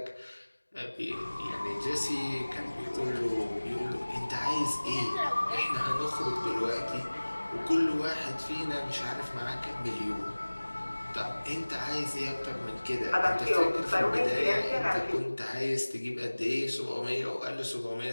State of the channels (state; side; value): inverted; both; correlation -1.00